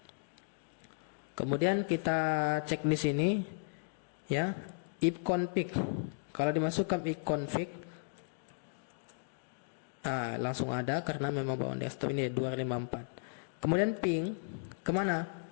Kemudian kita cek di sini ya, ipconfig. Kalau dimasukkan ipconfig langsung ada karena memang bawaan desktop ini 254. Kemudian ping kemana?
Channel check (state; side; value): silent; right; digital silence